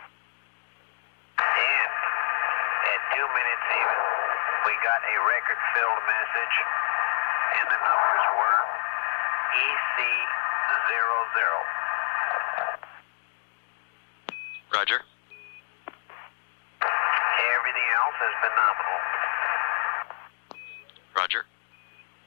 And at 2 minutes even, we got a record-filled message, and the numbers were EC00. Roger. Everything else has been nominal. Roger.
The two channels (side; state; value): right; silent; digital silence